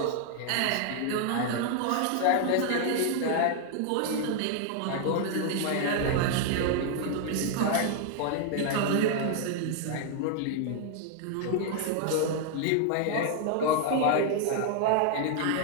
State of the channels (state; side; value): different; both; correlation 0.00